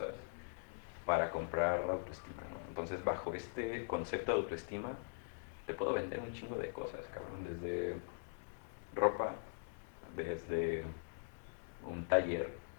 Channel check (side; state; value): right; silent; digital silence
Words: para comprar autoestima, ¿no? Entonces, bajo este concepto de autoestima, te puedo vender un chingo de cosas, cabrón, desde ropa, desde un taller,